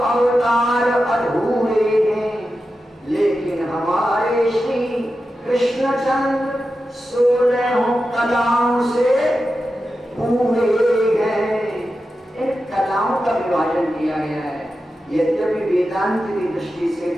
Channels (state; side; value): normal; both; correlation 0.91